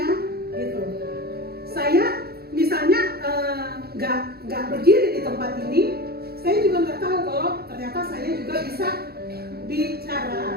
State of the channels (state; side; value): late; left; 0.46 ms